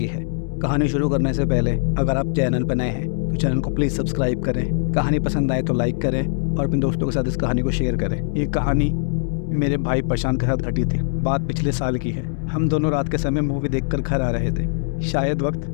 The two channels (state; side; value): silent; right; digital silence